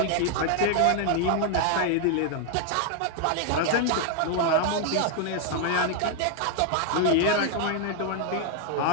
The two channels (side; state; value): both; different; correlation 0.00